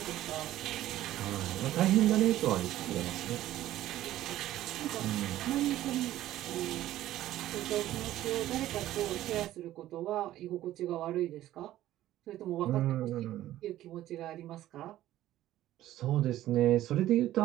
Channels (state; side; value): quieter; left; 14.0 dB